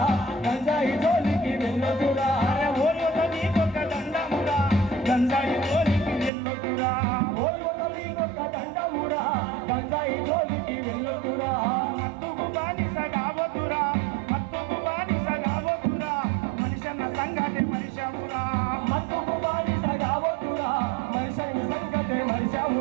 గంజాయి జోలికి వెళ్ళొద్దురా. ఓ యువత నీకొక్క దండమురా, గంజాయి జోలికి వెళ్ళొద్దురా. ఓ యువత నీకొక్క దండమురా, గంజాయి జోలికి వెళ్ళొద్దురా. మత్తుకు బానిస కావద్దురా, మత్తుకు బానిస కావద్దురా. మనిషన్న సంగతి మనిషమురా, మత్తుకు బానిస కావద్దురా. మనిషి సంగతే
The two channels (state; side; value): drops out; left; at 6.3 s